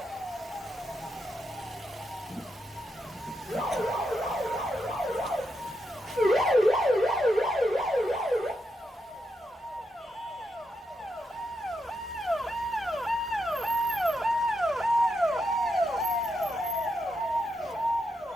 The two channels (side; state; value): both; normal; correlation 0.83